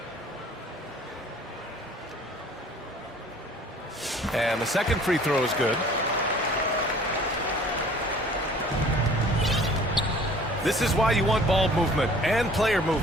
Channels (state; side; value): normal; both; correlation 0.51